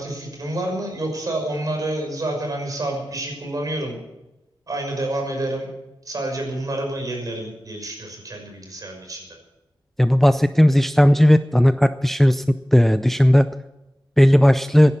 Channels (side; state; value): both; normal; correlation 0.97